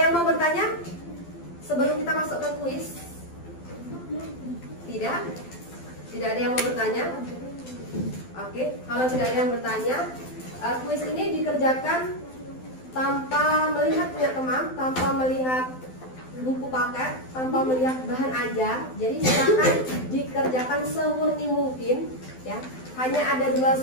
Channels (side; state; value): right; late; 12 ms